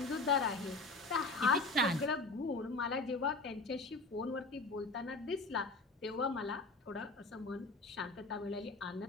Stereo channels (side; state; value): right; quieter; 3.3 dB